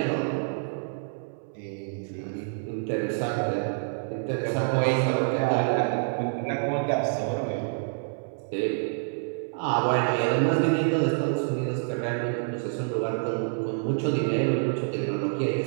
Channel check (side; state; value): left; silent; 60 dB below the other